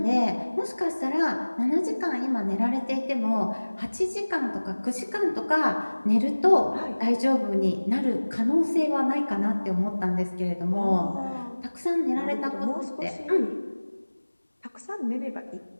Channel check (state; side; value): inverted; both; correlation -1.00